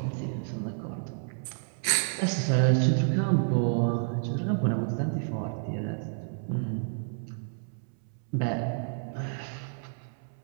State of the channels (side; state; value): left; silent; 58 dB below the other